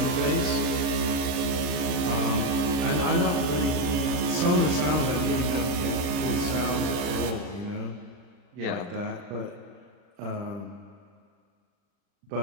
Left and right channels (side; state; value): left; late; 40 ms